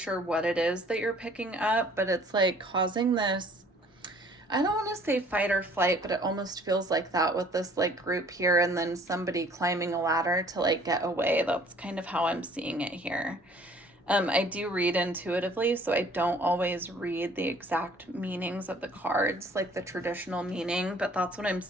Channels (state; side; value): normal; both; correlation 0.55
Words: what it is that you're picking up, but it's like causing this, I don't want to say fight or flight, but it almost feels like that with this like group here and then somebody climbing a ladder to like get away. That's kind of how I'm seeing it here. I do read intuitively, so I don't always read the exact meanings of the cards, like the traditional meaning, but that's what I'm